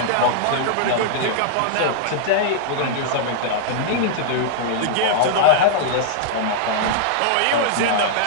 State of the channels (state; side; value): different; both; correlation -0.01